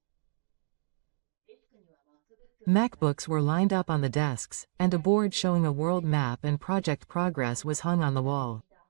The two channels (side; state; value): left; silent; digital silence